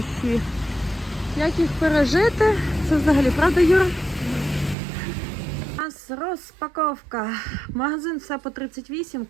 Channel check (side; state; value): left; drops out; at 4.8 s